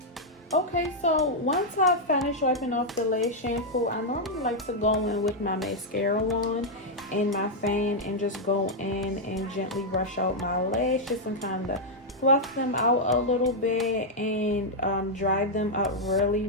Okay, so once I finish wiping off the lash shampoo, I normally like to go in with my mascara wand and my fan and just go in and gently brush out my lashes and kind of fluff them out a little bit and dry them up really,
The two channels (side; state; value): both; normal; correlation -0.03